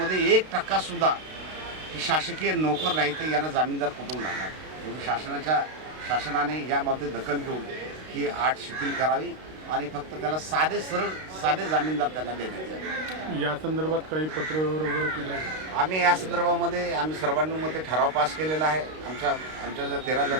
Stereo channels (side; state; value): left; late; 32 ms